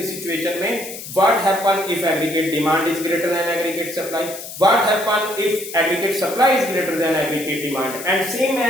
सिचुएशन में what happen if aggregate demand is greater than aggregate supply, what happen if aggregate supply is greater than aggregate demand, and same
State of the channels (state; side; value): noise; left; hiss, 11 dB below the sound